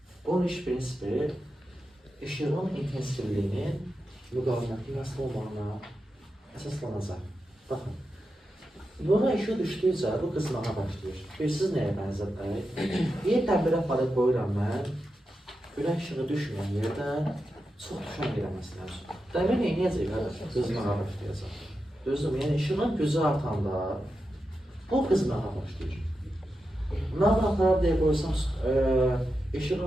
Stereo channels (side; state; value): both; normal; correlation 0.89